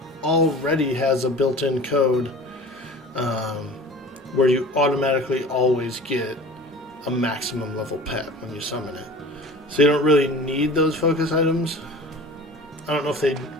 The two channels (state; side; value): normal; both; correlation 0.40